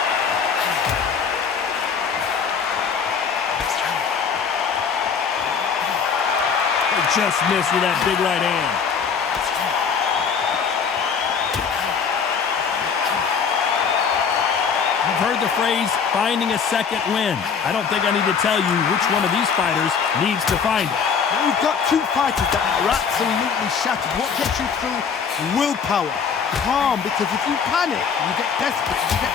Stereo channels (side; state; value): right; quieter; 6.4 dB